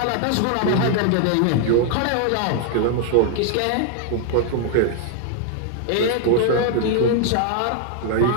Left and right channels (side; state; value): both; different; correlation 0.00